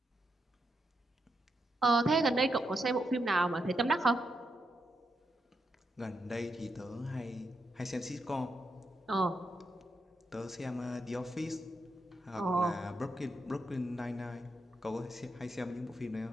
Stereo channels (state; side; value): normal; both; correlation 0.83